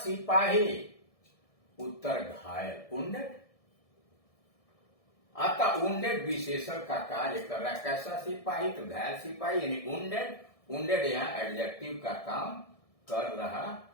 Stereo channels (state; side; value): late; right; 1.6 ms